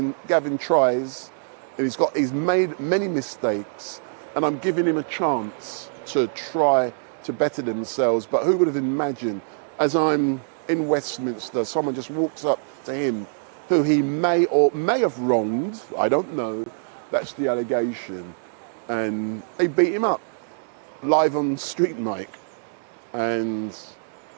tries, and he's made many mistakes, and I'm giving him a chance to try to better themselves. But who would have imagined, as I'm in Westminster, someone just walks up to him who he may have wronged, I don't know, that's the allegation, and they beat him up live on StreetMic, and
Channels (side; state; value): left; silent; digital silence